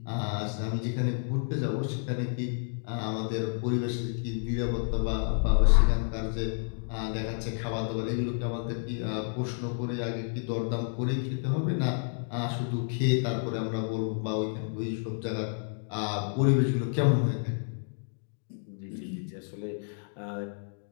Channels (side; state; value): right; silent; digital silence